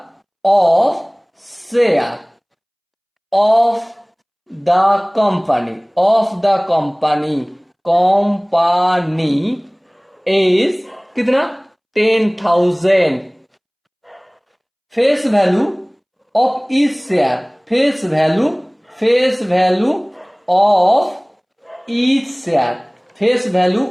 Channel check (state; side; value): identical; both; correlation 1.00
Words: of share of the company, company is कितना? 10,000। Face value of each share, face value of each share, face value